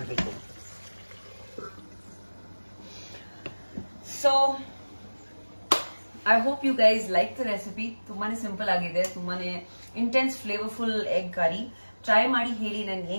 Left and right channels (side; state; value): both; inverted; correlation -1.00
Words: So I hope you guys like the recipe. ತುಂಬಾನೇ ಸಿಂಪಲ್ ಆಗಿದೆ, ತುಂಬಾನೇ intense flavourful egg curry. Try ಮಾಡಿ ಹೇಳಿ ನನ್ಗೆ